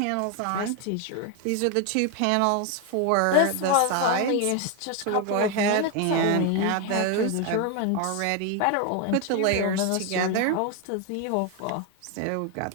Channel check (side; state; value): both; different; correlation 0.01